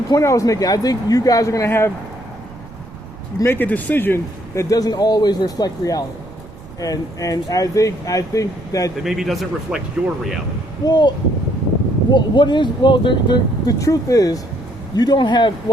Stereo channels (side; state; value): right; noise; rumble, 19 dB below the sound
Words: point I was making. I think you guys are going to make a decision that doesn't always reflect reality. And I think that maybe doesn't reflect your reality. The truth is, you don't have,